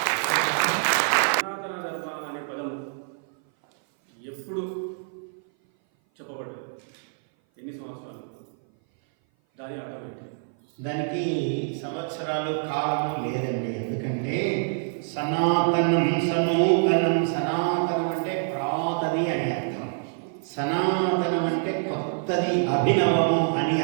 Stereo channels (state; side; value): silent; left; 57 dB below the other